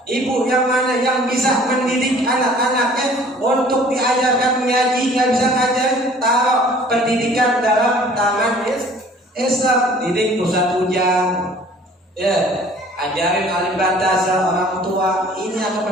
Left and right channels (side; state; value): both; normal; correlation 0.51